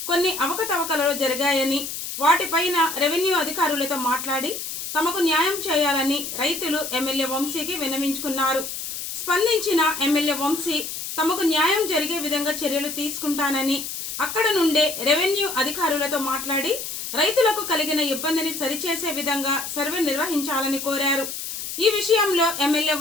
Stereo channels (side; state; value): left; noise; hiss, 6 dB below the sound